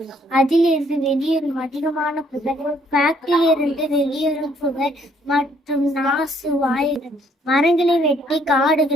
அதிலிருந்து வெளியேறும் அதிகமான புகை, ஃபேக்டரியிலிருந்து வெளியேறும் புகை மற்றும் நாசு வாயுகள், மரங்களை வெட்டி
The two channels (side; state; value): both; normal; correlation 0.66